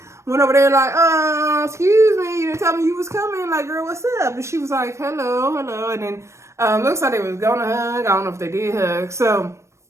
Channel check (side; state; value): left; late; 0.14 ms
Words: went over there like, excuse me, you didn't tell me you was coming. Like, girl, what's up? And she was like, hello. And then looks like they was going to hug. I don't know if they did hug. So